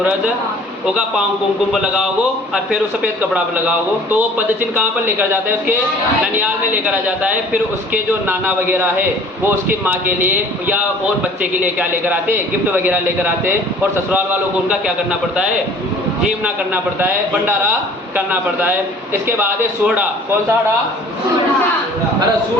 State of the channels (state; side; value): normal; both; correlation 0.50